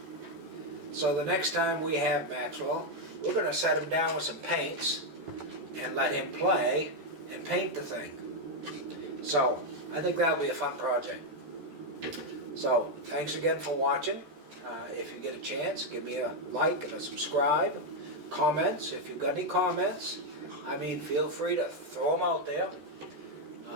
So the next time we have Maxwell, we're going to set him down with some paints and let him play and paint the thing. So I think that'll be a fun project. So thanks again for watching. If you get a chance, give me a like and a subscribe. Comments, if you've got any comments, I mean, feel free to throw them out there.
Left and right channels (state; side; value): late; left; 13 ms